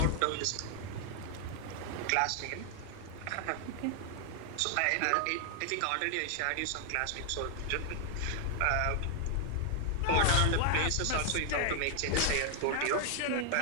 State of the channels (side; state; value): both; different; correlation 0.00